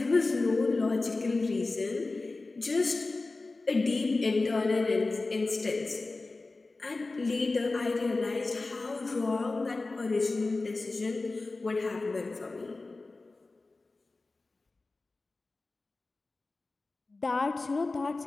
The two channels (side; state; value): right; quieter; 3.4 dB